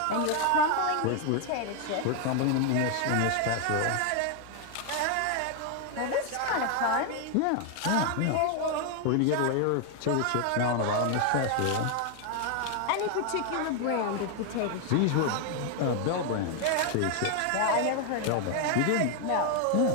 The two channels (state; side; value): different; both; correlation 0.00